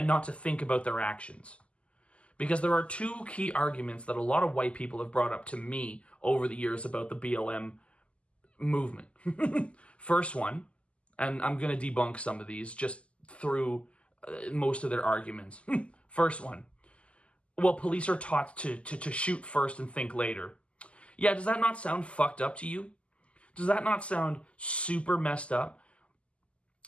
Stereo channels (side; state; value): right; late; 0.058 ms